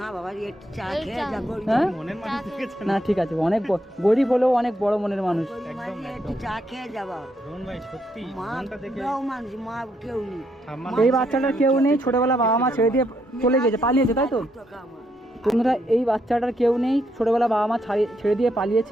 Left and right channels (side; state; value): both; normal; correlation 0.76